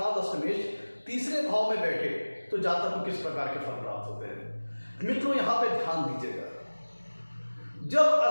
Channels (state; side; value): inverted; both; correlation -1.00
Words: अष्टमेश तीसरे भाव में बैठे तो जातक को किस प्रकार के फल प्राप्त होते हैं। मित्रों, यहां पे ध्यान दीजिएगा, जब